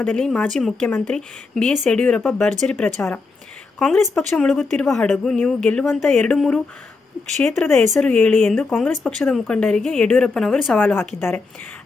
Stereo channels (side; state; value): right; quieter; 4.0 dB